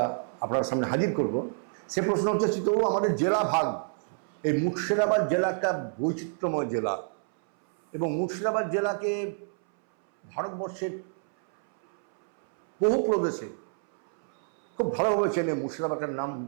আপনার সামনে হাজির করব, সে প্রশ্ন হচ্ছে, চিত্তবাবু, আমাদের জেলা ভাগ, এই মুর্শিদাবাদ জেলা একটা বৈচিত্র্যময় জেলা এবং মুর্শিদাবাদ জেলাকে ভারতবর্ষের বহু প্রদেশে খুব ভালোভাবে চেনে। মুর্শিদাবাদের নাম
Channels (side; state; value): left; silent; 59 dB below the other